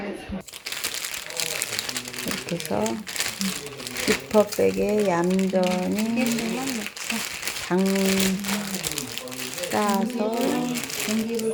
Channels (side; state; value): both; identical; correlation 1.00